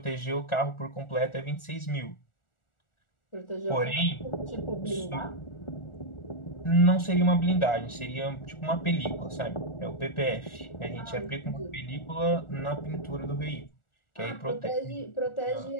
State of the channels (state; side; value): late; right; 1.4 ms